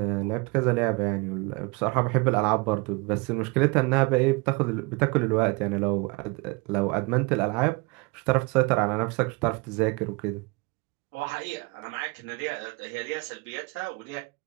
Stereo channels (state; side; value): quieter; left; 26.9 dB